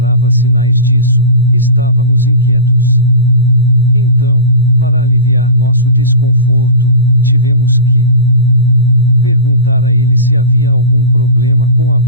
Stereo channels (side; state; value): both; inverted; correlation -0.30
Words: sinais disso, estávamos inquietos. Então, para aliviar nosso desconforto, tivemos que perguntar a ele se havia algum problema com a